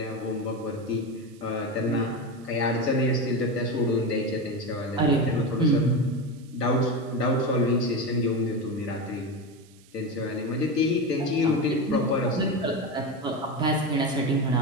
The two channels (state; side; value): noise; right; hiss, 28 dB below the sound